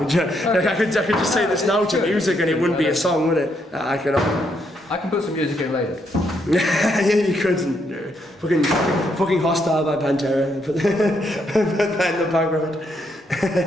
I could just say this now to music and it wouldn't be a song, would it? I can put some music in later. Yeah, you couldn't. Fucking Hostile by Pantera. Put that in the background.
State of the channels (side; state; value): both; normal; correlation 0.76